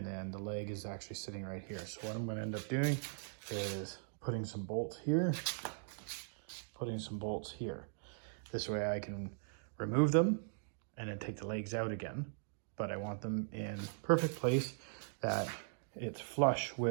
then the leg is actually sitting right here. So what I'm going to end up doing is putting some bolts here, putting some bolts here. This way I can remove them and then take the legs out again. But I want them in perfect place, that it's flush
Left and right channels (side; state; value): left; silent; digital silence